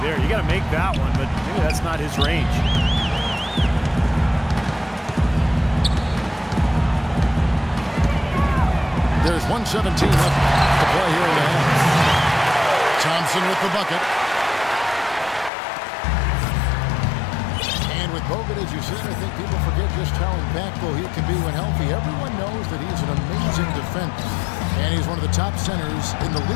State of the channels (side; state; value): right; drops out; at 15.5 s